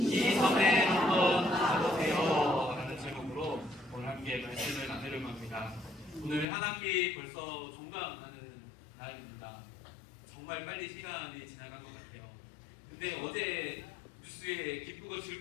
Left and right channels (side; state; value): right; drops out; at 6.5 s